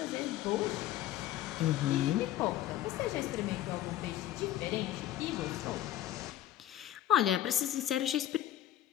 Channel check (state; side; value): quieter; right; 12.9 dB